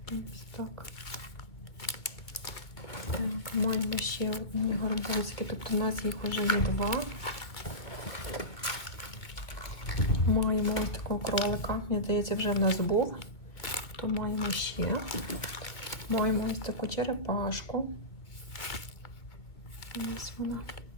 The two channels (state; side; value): late; right; 2.1 ms